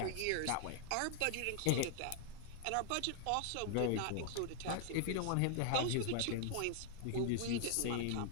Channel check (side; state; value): both; different; correlation 0.00